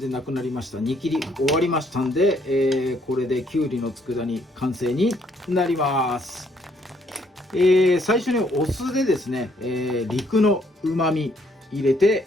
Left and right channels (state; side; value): normal; both; correlation 0.69